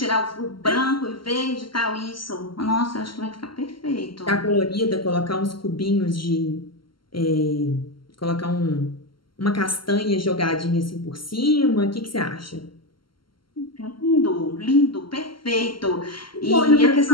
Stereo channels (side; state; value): right; late; 0.73 ms